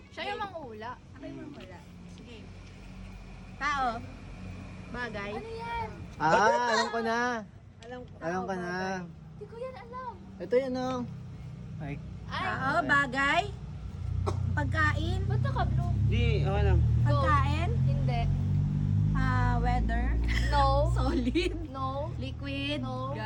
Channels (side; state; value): both; identical; correlation 1.00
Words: Siya yung manghula. Ako yung manghula. Sige. Tao. Bagay. Ano yan? Alam ko na. Alam Alam ko na. Hindi ko yan alam. Ito yun, oh. Ay. Ay, Tao, bagay. Pagkain. ba't naka-blue? Hindi, okay lang. Pagkain. Hindi. Weather. No. Solid. No. Liquid. No.